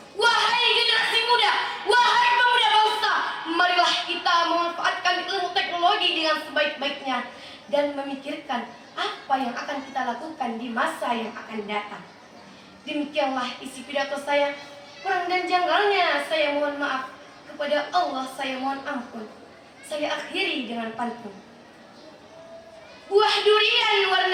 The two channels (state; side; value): identical; both; correlation 1.00